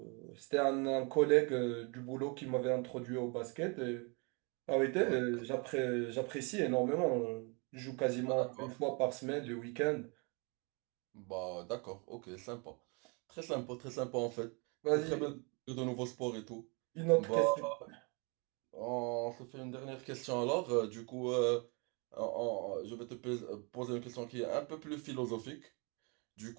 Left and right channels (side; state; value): left; quieter; 32.5 dB